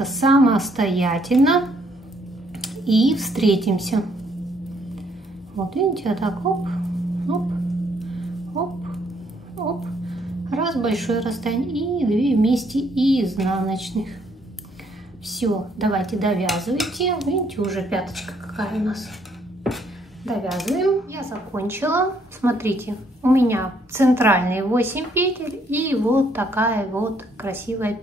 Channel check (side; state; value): both; normal; correlation 0.69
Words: самостоятельно и встретимся. Вот видите, вот так, оп, оп, оп, оп. Раз, большое расстояние и 2 вместе и изнаночных. Все, давайте довязывайте. Видите, уже пяточка какая у нас. Довязываем. Я закончила. Смотрите, у меня центральные 8 петель и вот такая вот красивая